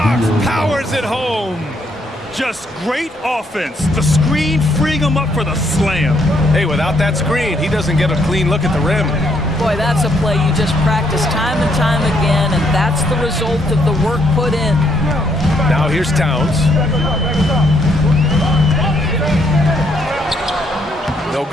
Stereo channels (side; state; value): both; normal; correlation 0.72